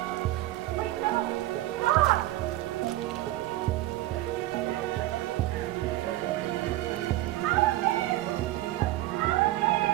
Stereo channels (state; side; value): quieter; left; 16.0 dB